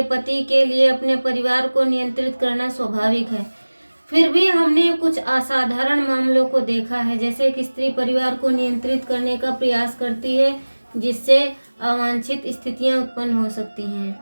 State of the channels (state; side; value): inverted; both; correlation -1.00